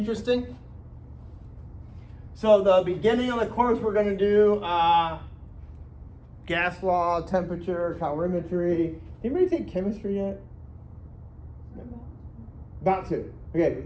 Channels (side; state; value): both; identical; correlation 1.00